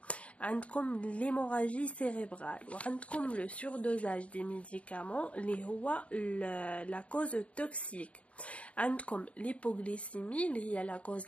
عندكم l'hémorragie cérébrale وعندكم le surdosage des médicaments اللي هو la cause toxique. عندكم l'hypoglycémie اللي هي la cause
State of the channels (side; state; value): right; late; 0.064 ms